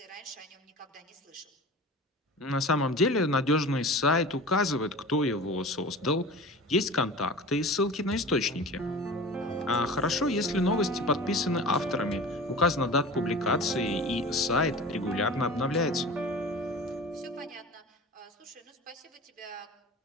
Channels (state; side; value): normal; both; correlation 0.36